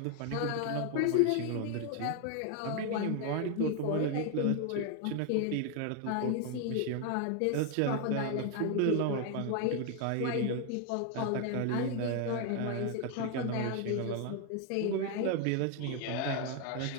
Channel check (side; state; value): both; different; correlation 0.01